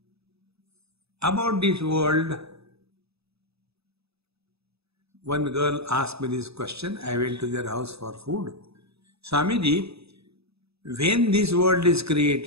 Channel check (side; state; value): left; late; 0.78 ms